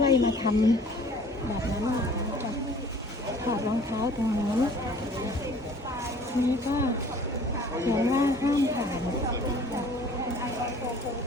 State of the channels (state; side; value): normal; both; correlation 0.51